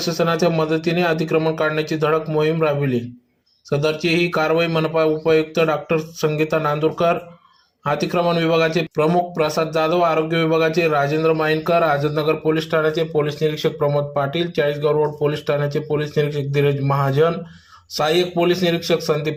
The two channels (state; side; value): identical; both; correlation 1.00